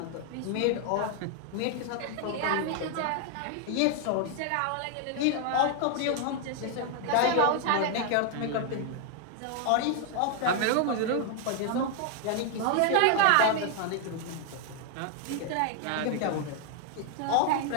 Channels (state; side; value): different; both; correlation 0.00